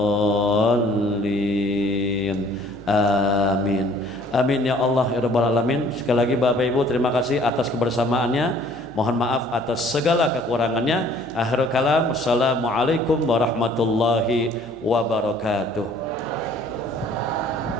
Amin. Amin ya Allah ya Rabbal Alamin. Sekali lagi Bapak Ibu terima kasih atas kebersamaannya. Mohon maaf atas segala kekurangannya. Akhirul kalam, assalamualaikum warahmatullahi wabarakatuh.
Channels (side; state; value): both; normal; correlation 0.56